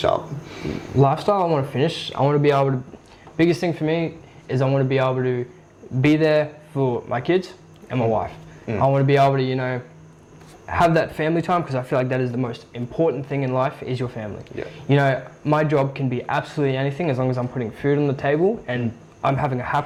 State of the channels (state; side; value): identical; both; correlation 1.00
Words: up. Lifestyle I want to finish. I want to be able to. Biggest thing for me is I want to be able to be there for my kids and my wife. I want to be able to, you know, have that family time because I feel like that is the most important thing in life is your family. Yeah. You know, my job can be absolutely anything as long as I'm putting food on the table and I'm having a